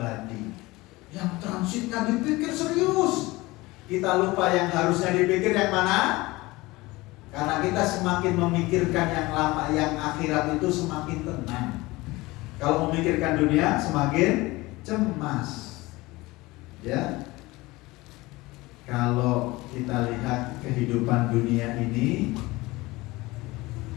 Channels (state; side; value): quieter; right; 21.0 dB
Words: Yang transitnya dipikir serius, kita lupa yang harusnya dipikir yang mana. Karena kita semakin memikirkan yang lama, yang akhirat itu semakin tenang. Kalau memikirkan dunia semakin cemas. Ya. Kalau kita lihat kehidupan dunia ini,